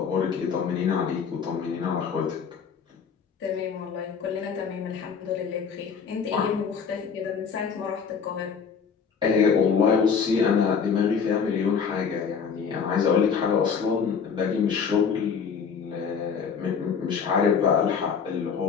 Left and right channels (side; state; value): right; quieter; 6.4 dB